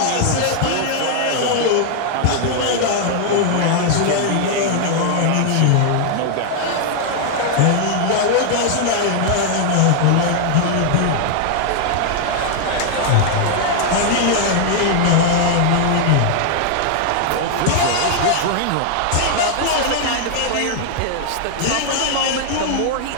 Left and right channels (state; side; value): different; both; correlation 0.00